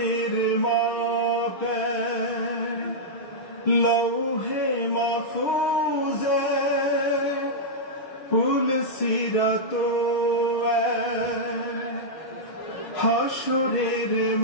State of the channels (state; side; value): late; right; 6.4 ms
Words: মাপে লৌহে মাহফুজে পুল সিরাত হাসরের